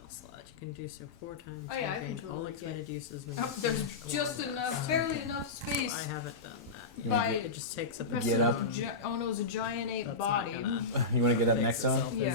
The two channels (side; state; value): right; quieter; 3.8 dB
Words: slot, you can do so 4 times. Oh, yeah, I and can gain all totally expended uses when Oh, you there's finish a just level. enough, barely enough space. I haven't done that. You wanna By It just takes up a rest Get of up. the oh no, it's a giant ape That's body. not gonna You want to get up fix next on? itself, is